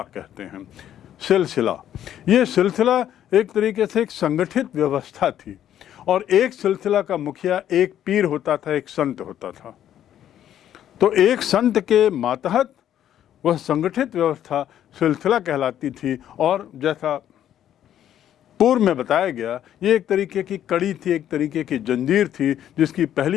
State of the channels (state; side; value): quieter; right; 10.8 dB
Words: कहते हैं। सिलसिला, ये सिलसिला एक तरीके से एक संगठित व्यवस्था थी और एक सिलसिला का मुखिया एक पीर होता था, एक संत होता था। तो एक संत के मातहत वह संगठित व्यवस्था सिलसिला कहलाती थी और जैसा पूर्व में बताया गया, ये एक तरीके की कड़ी थी, एक तरीके की जंजीर थी, जिसकी